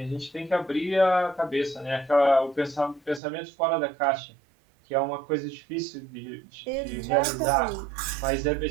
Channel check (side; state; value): left; drops out; at 3.2 s